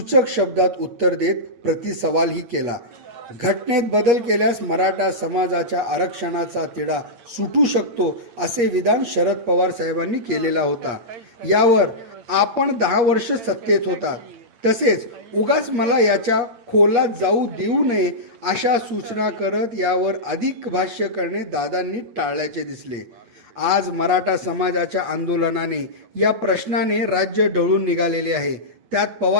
शब्दात उत्तर देत प्रतिसवालही केला. घटनेत बदल केल्यास मराठा समाजाच्या आरक्षणाचा तिढा सुटू शकतो असे विधान शरद पवार साहेबांनी केलेला होता. यावर आपण 10 वर्ष सत्तेत होता, तसेच उगाच मला याच्या खोलात जाऊ देऊ नये अशा सूचना करत यावर अधिक भाष्य करणे दादांनी टाळल्याचे दिसले. आज मराठा समाजाच्या आंदोलनाने, या प्रश्नाने राज्य ढवळून निघालेले आहे. त्यात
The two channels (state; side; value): late; left; 8.4 ms